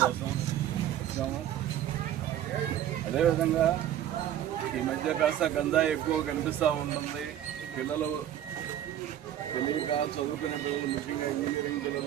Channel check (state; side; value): quieter; left; 11.3 dB